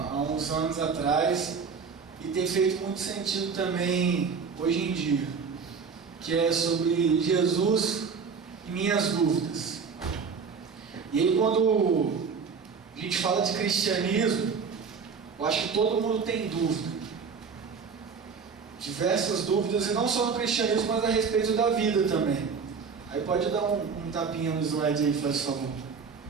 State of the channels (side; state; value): left; quieter; 5.6 dB